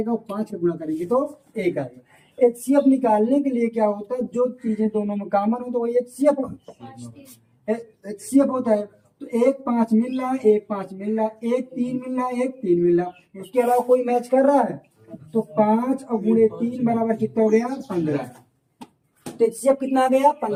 और 5 का गुणा करेंगे तो 1 आएगा। HCF निकालने के लिए क्या होता है, जो चीजें दोनों में कॉमन हो तो वही HCF होता है। तो 1 5 मिल रहा है, 1 5 मिल रहा है, 1 3 मिल रहा है, 1 3 मिल रहा है, उसके अलावा कोई मैच कर रहा है, तो 5 और गुणे 3 बराबर कितना हो गया 15। तो HCF कितना आ गया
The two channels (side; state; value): both; identical; correlation 1.00